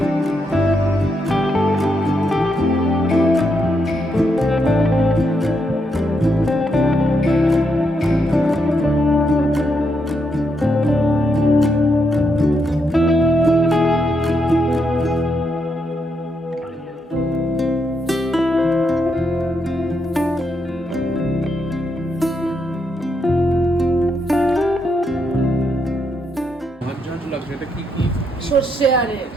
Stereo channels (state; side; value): normal; both; correlation 0.80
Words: ঝাঁঝ লাগছে, এটা কি কি সর্ষে আরে